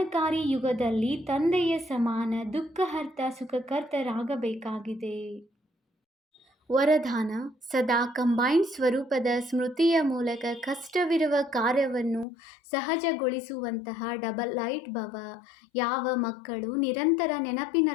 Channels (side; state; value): right; drops out; at 12.2 s